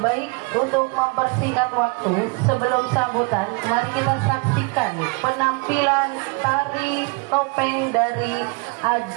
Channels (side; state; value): left; quieter; 30.4 dB